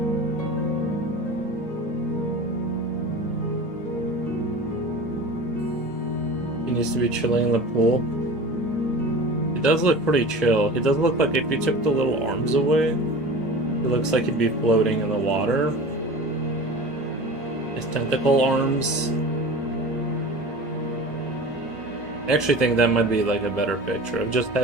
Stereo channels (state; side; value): normal; both; correlation 0.35